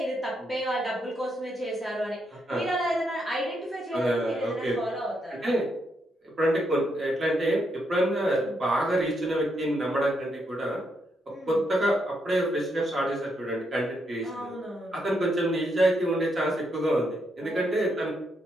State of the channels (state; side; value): normal; both; correlation 0.79